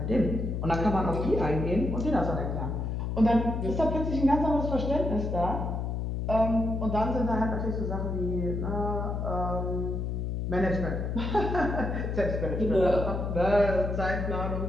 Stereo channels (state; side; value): noise; left; hum, 2 dB below the sound